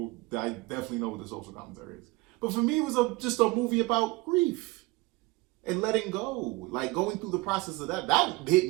definitely know what the social commentary is. But for me, it was just a movie about grief and letting go, like going through the process of that. That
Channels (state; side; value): quieter; left; 22.4 dB